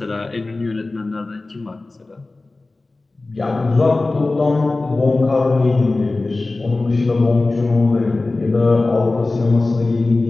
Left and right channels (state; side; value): quieter; right; 3.2 dB